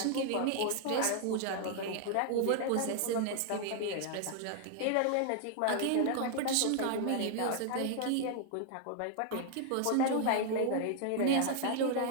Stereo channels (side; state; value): both; different; correlation 0.00